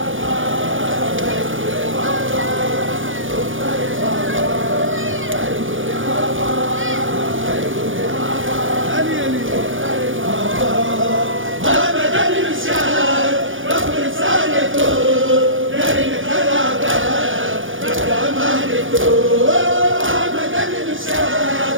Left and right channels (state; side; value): late; left; 0.57 ms